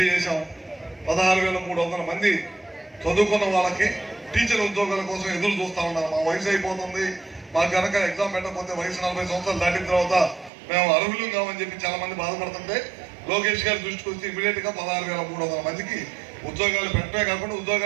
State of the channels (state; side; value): drops out; left; at 10.5 s